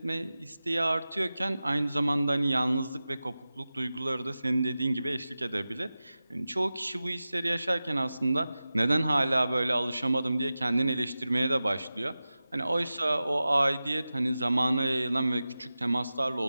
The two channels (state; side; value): inverted; both; correlation -0.95